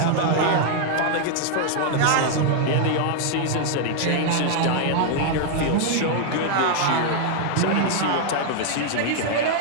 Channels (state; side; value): different; both; correlation 0.00